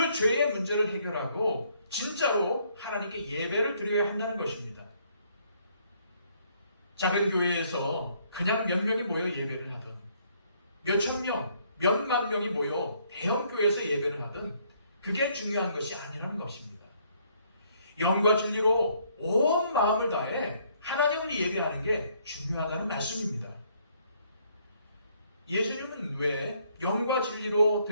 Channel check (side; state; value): both; inverted; correlation -0.67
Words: 죄의 문제를 해결하고 진짜로 하나님께 예배를 드려야 한다는 것입니다. 작은 교회에서 그냥 몇 명이 모여 예배를 하든 몇천 명, 몇만 명이 모여 대형교회에서 예배를 하든 그게 중요한 것이 아니라는 것입니다. 영과 진리로 온 마음을 다해 하나님을 예배하는 게 중요하다는 말씀입니다. 예수님은 왜 영과 진리로